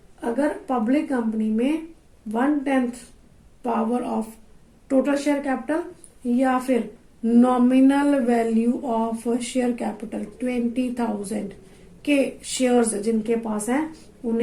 अगर पब्लिक कंपनी में 1/10 power of total share capital या फिर nominal value of share capital 20,000 के शेयर्स जिनके पास हैं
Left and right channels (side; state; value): both; identical; correlation 1.00